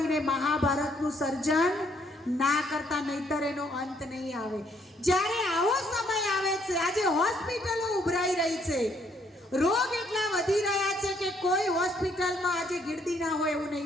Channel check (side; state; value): both; normal; correlation 0.69